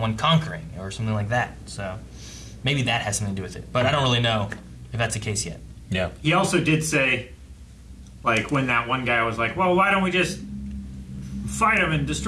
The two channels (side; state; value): both; identical; correlation 1.00